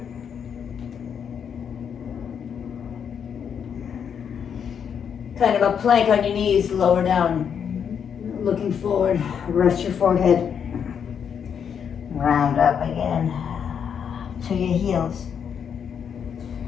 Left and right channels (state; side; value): quieter; right; 7.6 dB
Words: Kind of a plank on your knees, lower down. Looking forward, rest your forehead. Round up again to your heels.